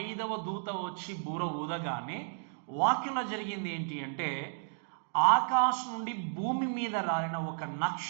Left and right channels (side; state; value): left; silent; digital silence